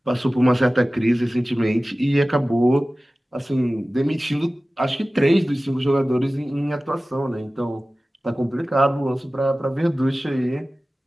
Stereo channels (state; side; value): normal; both; correlation 0.97